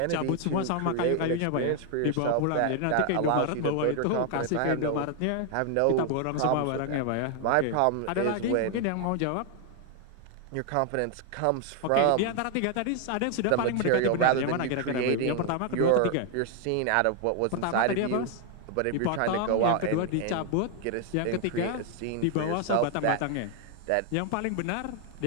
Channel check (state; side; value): different; both; correlation 0.00